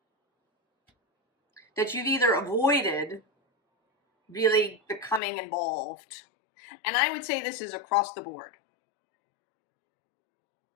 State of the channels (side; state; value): right; drops out; at 5.2 s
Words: that you've either avoided really becoming involved. And I would say this is across the board.